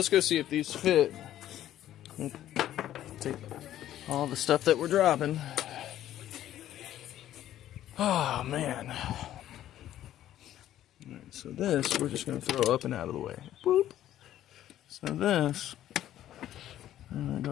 go see if these fit. Take all the stuff that we're dropping. Oh man. Alright, so this we're just gonna throw up and out of the way. Boop. So this, I'm gonna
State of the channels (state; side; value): quieter; right; 12.4 dB